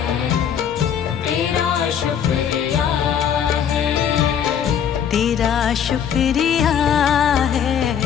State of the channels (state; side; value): quieter; right; 8.5 dB